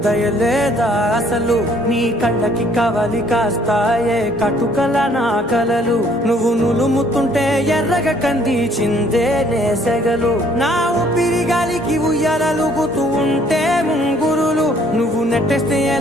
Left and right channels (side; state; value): both; normal; correlation 0.61